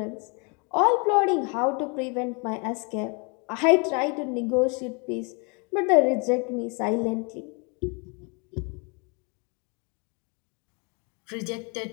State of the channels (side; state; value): right; quieter; 33.6 dB